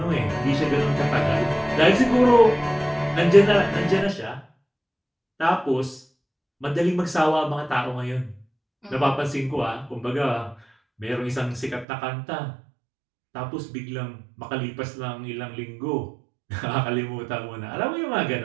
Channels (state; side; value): drops out; left; at 11.9 s